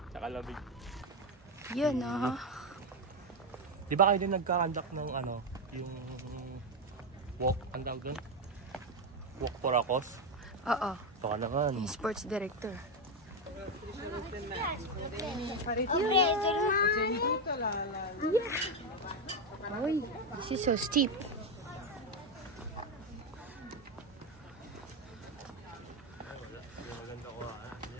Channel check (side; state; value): both; normal; correlation 0.08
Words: sa lamig. Yun ah. Di ba kayo din nagka-conduct ng ano, yung walk, ang tawag doon? Walk for a cause? Oo. Baka naman. Yung sports director. Uy, this is so steep.